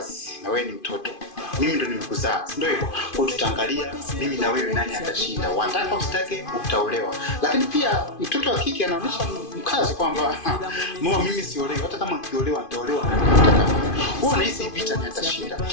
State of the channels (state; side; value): late; right; 2.5 ms